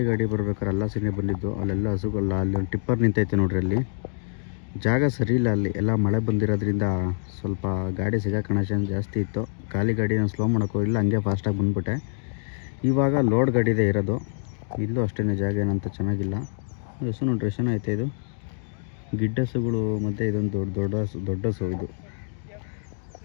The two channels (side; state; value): right; silent; digital silence